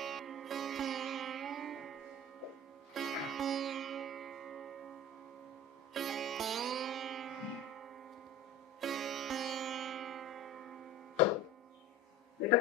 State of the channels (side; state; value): both; normal; correlation 0.36